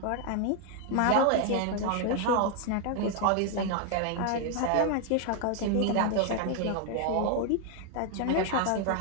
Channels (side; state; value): both; different; correlation 0.00